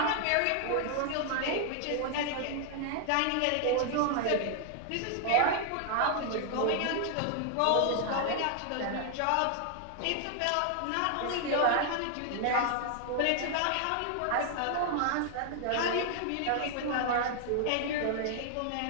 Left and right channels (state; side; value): different; both; correlation 0.00